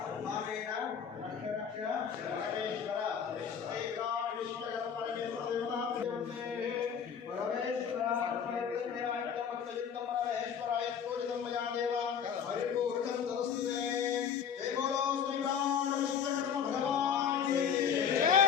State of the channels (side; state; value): right; quieter; 7.6 dB